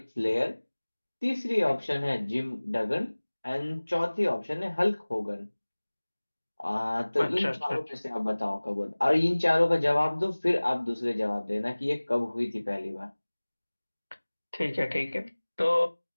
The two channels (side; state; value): both; inverted; correlation -1.00